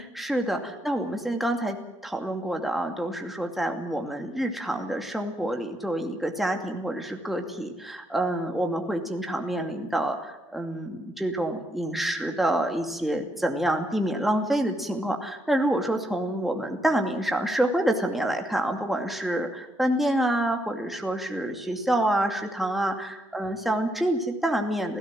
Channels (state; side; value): normal; both; correlation 0.77